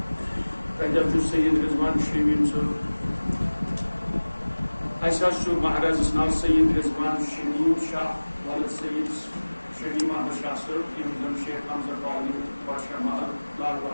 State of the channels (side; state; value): both; inverted; correlation -1.00